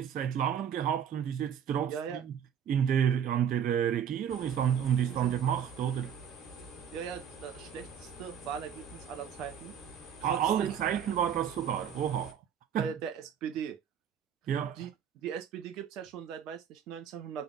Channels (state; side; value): quieter; left; 8.5 dB